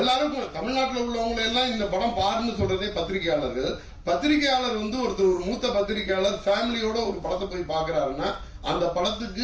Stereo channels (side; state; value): both; identical; correlation 1.00